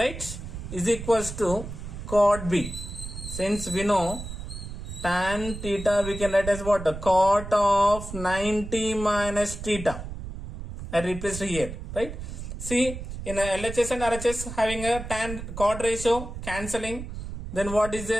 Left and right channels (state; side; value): noise; right; rumble, 9 dB below the sound